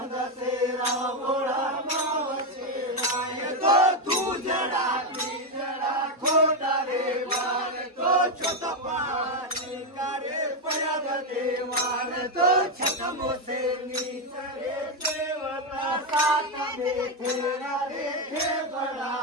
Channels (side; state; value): both; normal; correlation 0.06